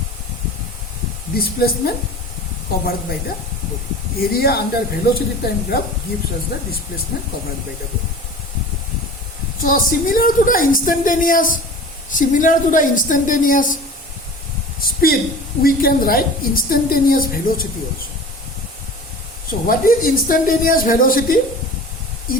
displacement covered by the body. Area under velocity time graph gives us the displacement covered by the body. So similar to the instantaneous speed, we can write instantaneous velocity also. So what is instantaneous velocity?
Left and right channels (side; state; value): both; normal; correlation 0.38